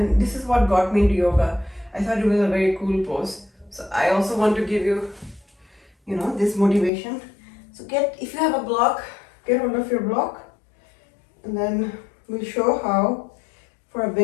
this is what got me into yoga. I thought it was a very cool pose. So I also want to give you, this motivation. So if you have a block, get hold of your block, and then we'll show how, for a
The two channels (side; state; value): right; drops out; at 6.9 s